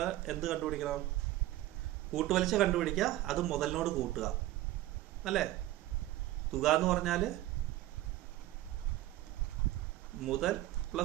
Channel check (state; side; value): quieter; left; 15.4 dB